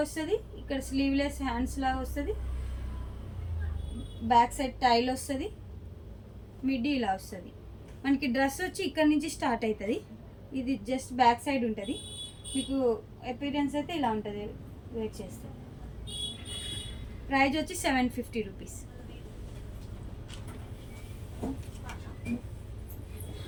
వస్తుంది, ఇక్కడ స్లీవ్లెస్ హ్యాండ్స్ లాగా వస్తుంది, బ్యాక్ సైడ్ టైల్ వస్తుంది, మిడ్డీ ఇలా వస్తుంది. మనకి డ్రెస్ వచ్చి ఇక్కడ నుంచి స్టార్ట్ అవుతుంది. ఇది జస్ట్ బ్యాక్ సైడ్ ఉంటుంది. మీకు అపీరెన్స్ అయితే ఇలా ఉంటుంది వేర్ చేస్తే. ప్రైజ్ వచ్చి 750 రూపీస్.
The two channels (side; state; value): both; identical; correlation 1.00